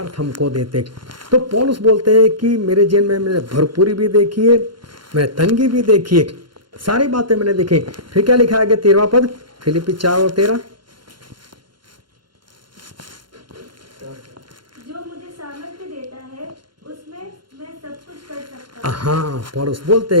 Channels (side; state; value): left; late; 0.72 ms